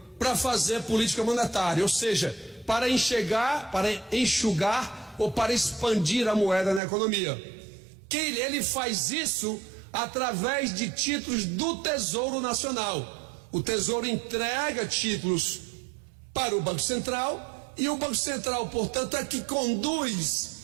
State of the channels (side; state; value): left; drops out; at 6.8 s